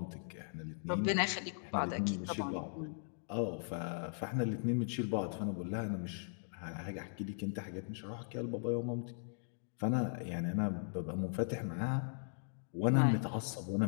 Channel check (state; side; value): silent; right; digital silence